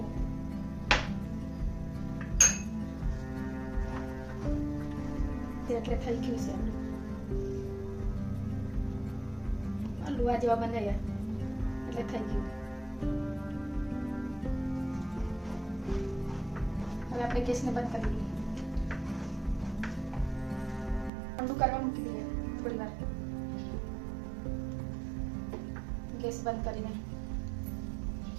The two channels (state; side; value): drops out; left; at 21.1 s